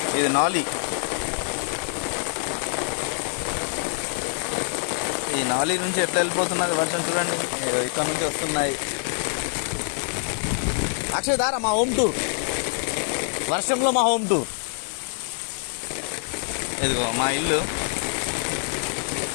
ఇది నాలి, ఈ నాలి నుంచి ఎట్లా వెళ్ళిపోతున్నది వర్షం చూడండి. ఇక్కడ నుంచి వస్తున్నాయి. అక్షయ్ దారా మా హోమ్ టూర్, వర్షంలో మా హోమ్ టూర్. ఇదిగో మా ఇల్లు,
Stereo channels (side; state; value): right; silent; 62 dB below the other